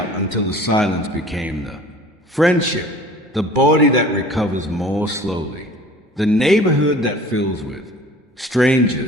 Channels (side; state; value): both; normal; correlation 0.47